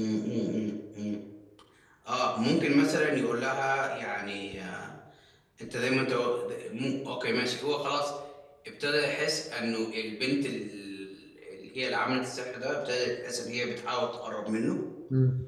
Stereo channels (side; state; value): both; identical; correlation 1.00